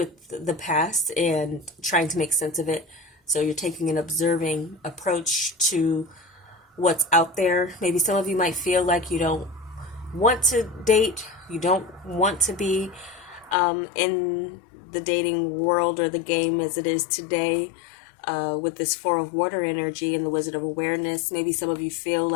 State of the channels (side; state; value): right; drops out; at 13.6 s